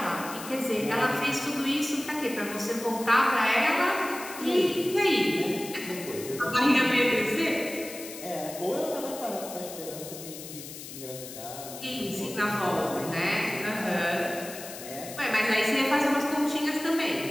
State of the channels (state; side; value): noise; left; hiss, 12 dB below the sound